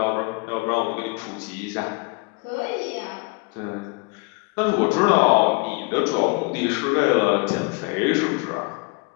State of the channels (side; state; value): right; quieter; 30.4 dB